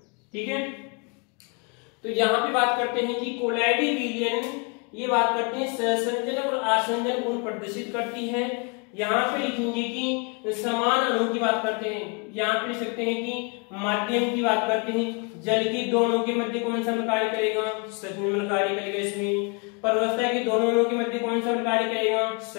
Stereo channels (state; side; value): quieter; right; 33.4 dB